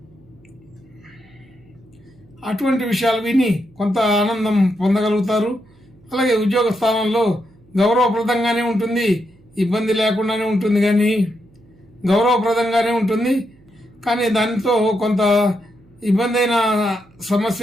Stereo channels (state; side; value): noise; right; hum, 29 dB below the sound